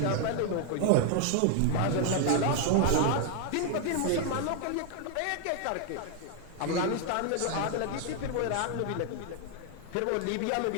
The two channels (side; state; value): both; different; correlation 0.00